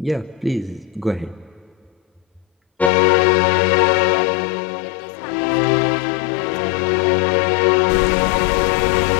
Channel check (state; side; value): drops out; right; at 2.9 s